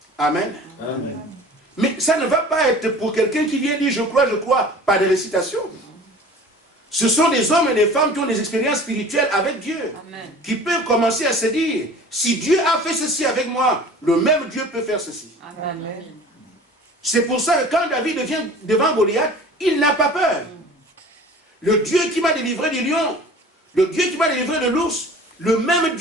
Amen. Amen. Mais ça ne va pas être pour quelqu'un qui vient dire je crois, pas de récitation. Ce sont des hommes et des femmes qui ont des expériences spirituelles avec Dieu. Amen. Qui peuvent commencer à se dire, si Dieu a fait ceci avec moi, le même Dieu peut faire ceci. Amen. C'est pour ça que quand David vient devant Goliath, il n'a pas peur. Le Dieu qui m'a délivré du lion, le Dieu qui m'a délivré de l'ours, le même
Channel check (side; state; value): both; normal; correlation 0.43